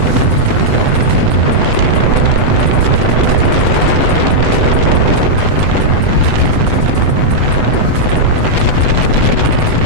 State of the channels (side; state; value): left; late; 8.0 ms